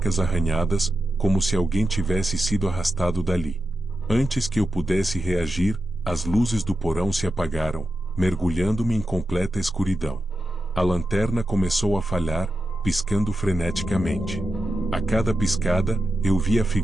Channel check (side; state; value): both; normal; correlation 0.90